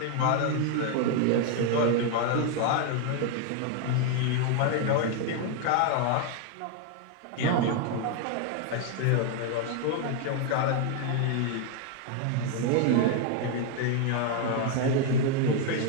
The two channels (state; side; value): different; both; correlation 0.01